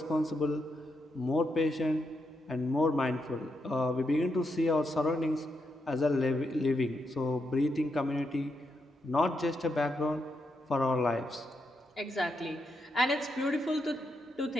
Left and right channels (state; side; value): normal; both; correlation 0.82